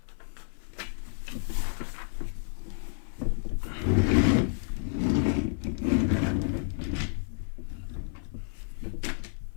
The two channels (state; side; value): silent; right; 58 dB below the other